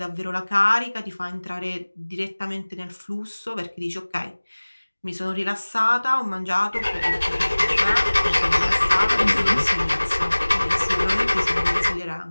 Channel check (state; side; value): inverted; both; correlation -1.00